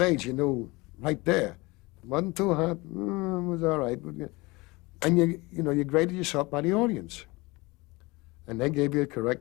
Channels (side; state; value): right; quieter; 23.5 dB